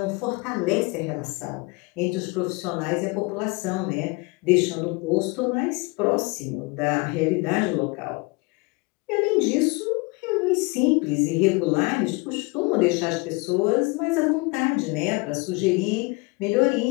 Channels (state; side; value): quieter; right; 26.9 dB